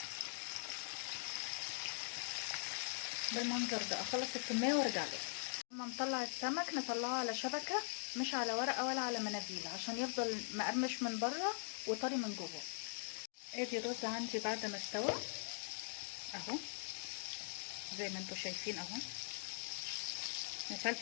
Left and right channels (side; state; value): right; silent; digital silence